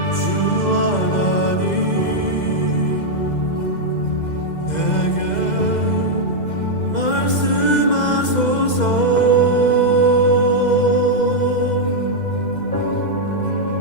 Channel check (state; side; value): late; right; 2.0 ms